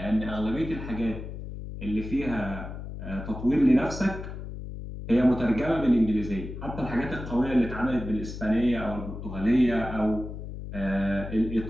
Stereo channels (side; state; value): left; noise; hum, 9 dB below the sound